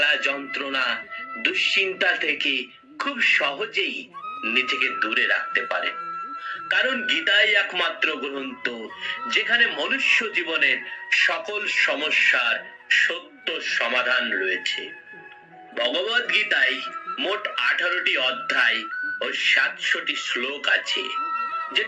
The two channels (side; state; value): both; identical; correlation 1.00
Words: যন্ত্রণা দুশ্চিন্তা থেকে খুব সহজেই নিজেকে দূরে রাখতে পারে। কারণ গীতাই একমাত্র গ্রন্থ যেখানে মনুষ্য জীবনের সকল সমস্যার সত্য সমাধান রয়েছে। ভগবত গীতায় মোট 18টি অধ্যায় ও 700টি শ্লোক আছে,